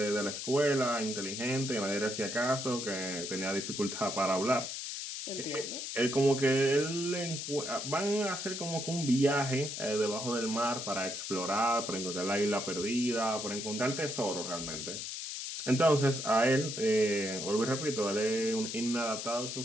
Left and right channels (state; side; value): noise; left; hiss, 6 dB below the sound